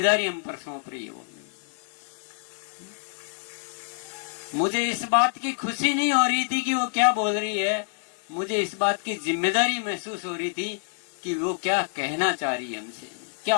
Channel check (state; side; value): silent; right; 60 dB below the other